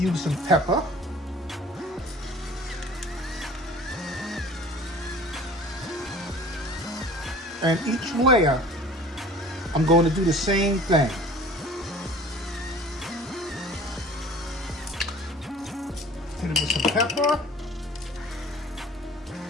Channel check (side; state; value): both; normal; correlation 0.47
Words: some pepper. And each layer, I'm going to do the same thing. Hit it with some pepper.